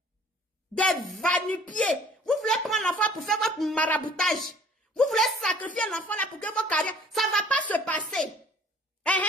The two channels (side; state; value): both; normal; correlation 0.53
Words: des va-nu-pieds. Vous voulez prendre l'enfant pour faire votre maraboutage. Vous voulez sacrifier l'enfant là pour que vos carrières, ça ne va pas se passer.